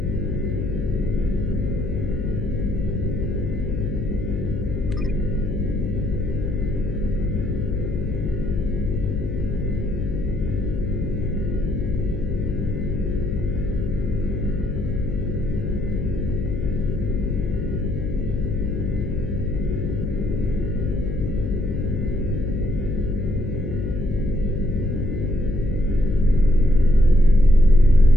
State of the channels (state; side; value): noise; left; hum, 4 dB below the sound